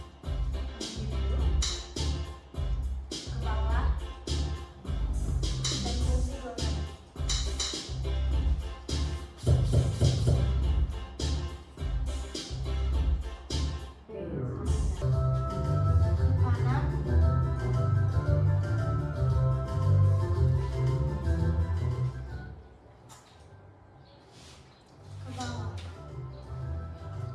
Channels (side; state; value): both; identical; correlation 1.00